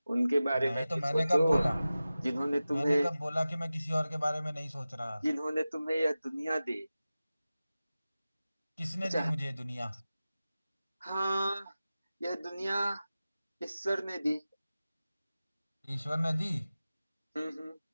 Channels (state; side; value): inverted; both; correlation -0.96